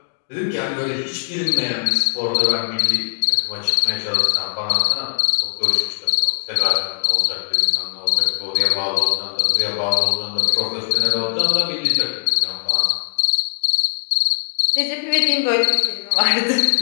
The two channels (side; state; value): right; silent; 63 dB below the other